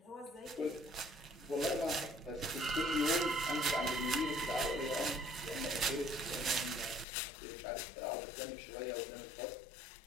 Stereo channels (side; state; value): right; drops out; at 7.1 s